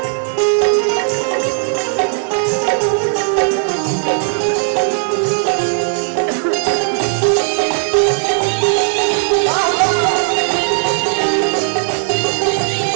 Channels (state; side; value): silent; left; digital silence